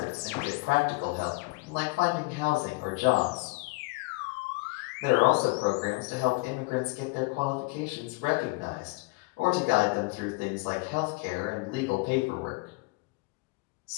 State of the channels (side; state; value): right; quieter; 26.1 dB